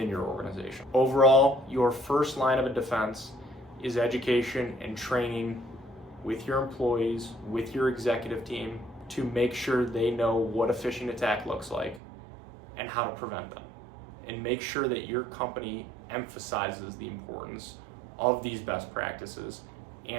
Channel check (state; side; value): drops out; left; at 12.0 s